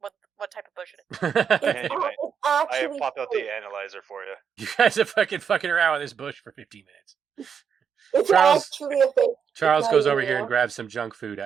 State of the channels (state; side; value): quieter; left; 7.1 dB